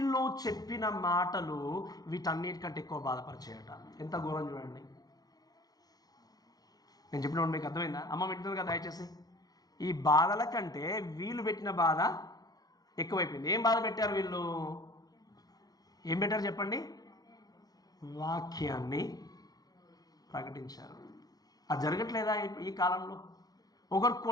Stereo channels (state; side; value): late; right; 0.19 ms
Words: చెప్పిన మాటలు వీటన్నిటికంటే ఎక్కువ బాధపరిచేయట. ఎంత ఘోరం చూడండి. నేను చెప్పిన మీకు అర్థమైందా? అమ్మ వింటుంది కదా దయచేసి. ఈ బాధల కంటే వీళ్ళు పెట్టిన బాధ ఎక్కువైపోయింది. ఏం బాధ పెట్టారు వీళ్ళు? ఏం పెట్టారు చెప్పండి? వాక్యాన్ని ప్రకటించారు. అది జరగట్లేదా ఈ కాలంలో? ఒకరు